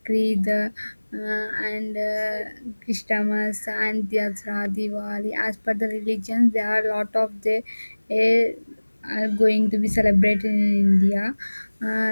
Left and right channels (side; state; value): both; inverted; correlation -1.00